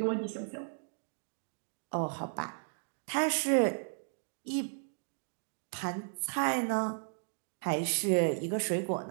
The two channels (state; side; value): silent; left; digital silence